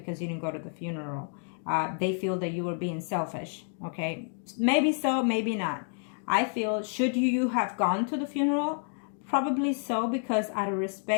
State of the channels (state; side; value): silent; right; 58 dB below the other